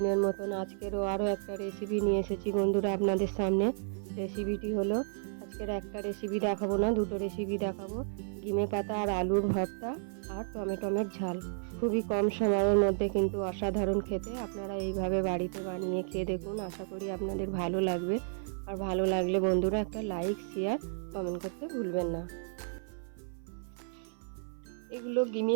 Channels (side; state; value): left; silent; 56 dB below the other